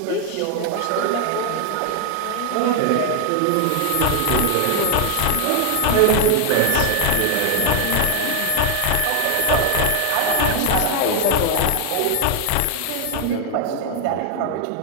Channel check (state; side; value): different; both; correlation 0.01